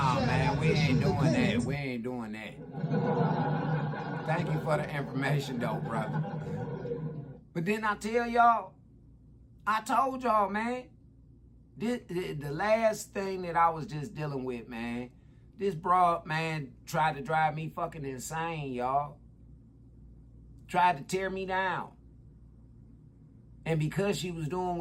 man, we ain't doing that. We ain't doing that. Thank you for the information, though, brother. But then I tell y'all, I told y'all, man, the last thing that I was just dealing with, man, this broad, man, tried to drive me fucking insane, y'all. Tried to tear me down. And because she was doing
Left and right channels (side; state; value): both; identical; correlation 1.00